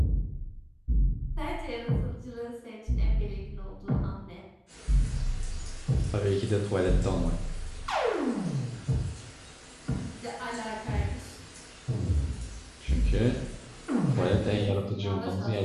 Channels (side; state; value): both; identical; correlation 1.00